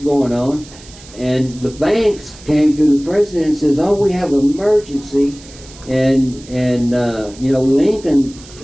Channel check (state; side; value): noise; right; hiss, 20 dB below the sound